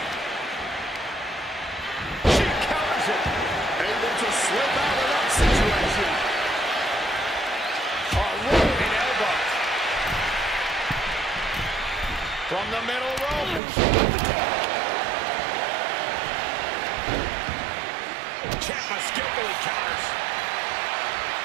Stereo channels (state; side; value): drops out; left; at 13.6 s